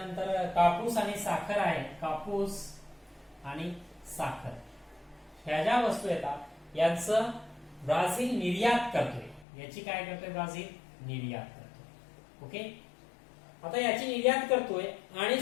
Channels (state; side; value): drops out; right; at 9.5 s